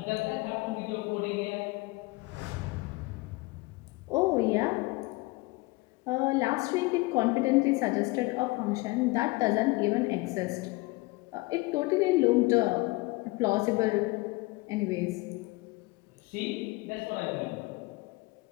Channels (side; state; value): right; quieter; 23.3 dB